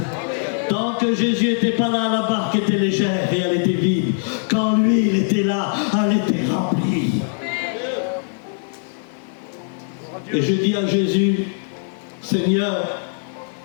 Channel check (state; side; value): silent; right; 65 dB below the other